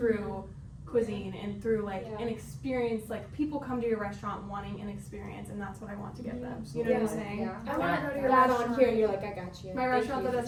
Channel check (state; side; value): identical; both; correlation 1.00